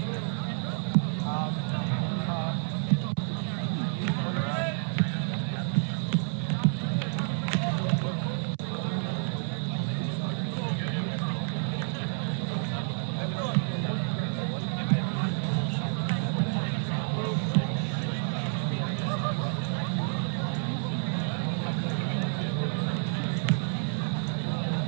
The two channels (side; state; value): left; silent; 58 dB below the other